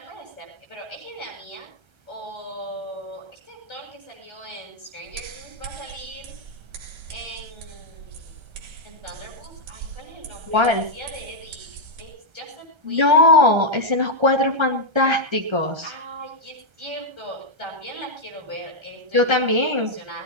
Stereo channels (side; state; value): left; late; 1.3 ms